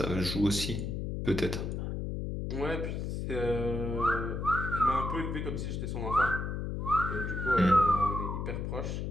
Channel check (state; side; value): noise; left; hum, 3 dB below the sound